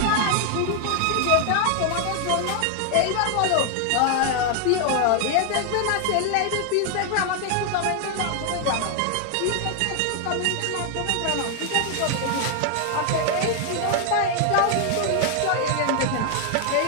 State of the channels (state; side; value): different; both; correlation 0.00